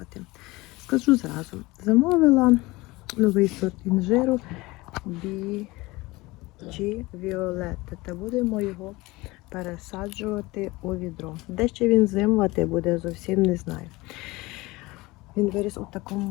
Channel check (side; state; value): right; quieter; 21.5 dB